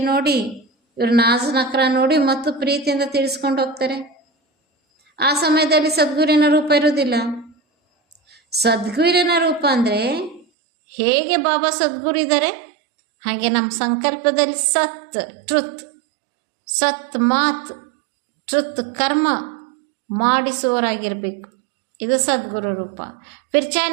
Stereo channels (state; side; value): drops out; left; at 10.5 s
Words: ನೋಡಿ, ಇವ್ರ ನಾಜ್ ನಕ್ರ ನೋಡಿ ಮತ್ತು ಪ್ರೀತಿಯಿಂದ ತಿಳಿಸ್ಕೊಂಡು ಹೋಗ್ತಾರೆ. ಆ ಸಮಯದಲ್ಲಿ ಸದ್ಗುರಿನ ರೂಪ ಇರೋದಿಲ್ಲ. ಸದ್ಗುರಿನ ರೂಪ ಅಂದರೆ ಹೇಗೆ ಬಾಬಾ ಸದ್ಗುರು ಇದ್ದಾರೆ ಹಾಗೆ ನಮ್ಮ ಸಂಕಲ್ಪದಲ್ಲಿ ಸತ್ ಟ್ರುತ್, ಸತ್ ಮಾತ್, ಟ್ರುತ್ ಕರ್ಮ ಮಾಡಿಸುವವರಾಗಿರಬೇಕು. ಇದು ಸದ್ಗುರು ರೂಪ. ಫಿರ್ ಚಾಹೆ